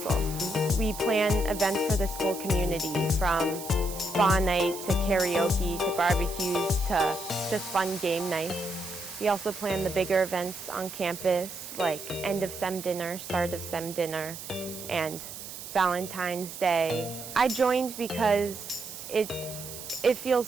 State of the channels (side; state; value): right; noise; hiss, 11 dB below the sound